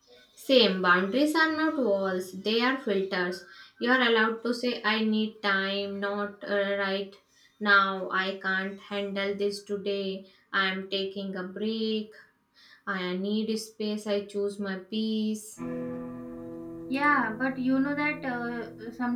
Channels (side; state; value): both; identical; correlation 1.00